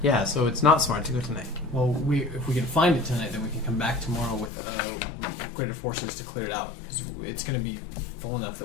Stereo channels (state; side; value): drops out; right; at 4.5 s